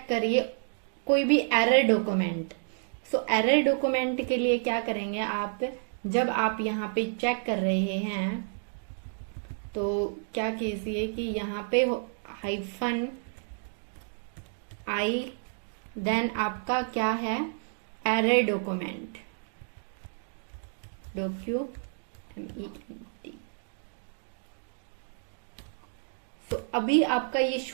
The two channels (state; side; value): silent; left; digital silence